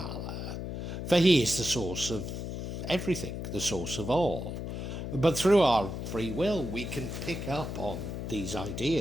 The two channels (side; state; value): left; noise; hum, 5 dB below the sound